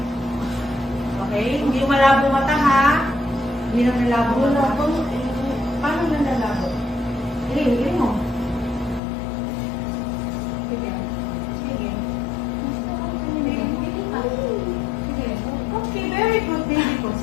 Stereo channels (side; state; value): right; drops out; at 9.0 s